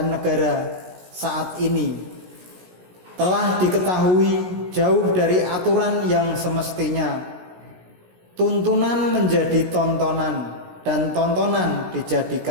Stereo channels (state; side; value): late; left; 16 ms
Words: negara saat ini. Telah diketahui jauh dari aturan yang semestinya. Tuntunan menjadi tontonan dan tontonan